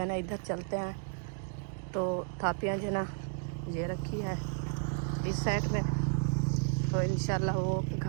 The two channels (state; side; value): silent; left; 56 dB below the other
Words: ना इधर चलते हैं। तो थापियाँ जो है ना ये रखी है इस साइड में। तो इंशाल्लाह वो